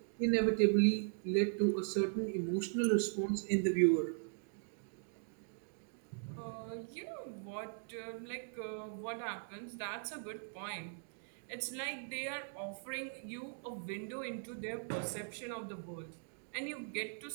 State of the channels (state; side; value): silent; left; digital silence